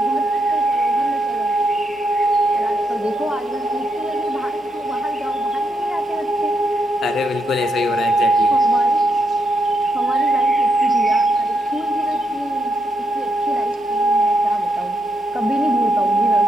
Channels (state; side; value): normal; both; correlation 0.80